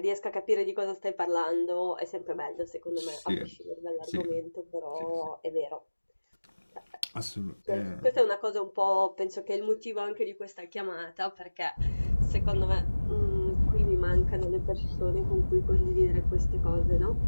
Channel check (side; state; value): both; inverted; correlation -1.00